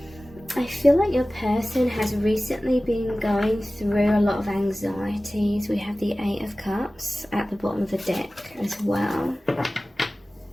feel like your person has recently been going through a lot of anxieties. We have the Eight of Cups at the bottom of the deck as well.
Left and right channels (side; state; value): both; normal; correlation 0.97